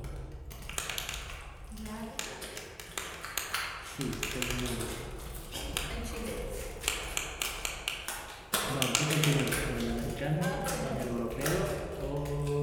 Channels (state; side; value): identical; both; correlation 1.00